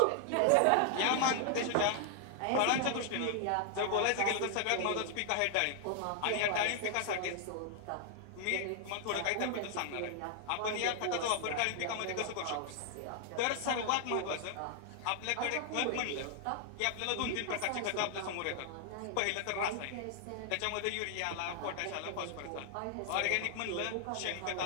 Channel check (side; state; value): both; different; correlation 0.00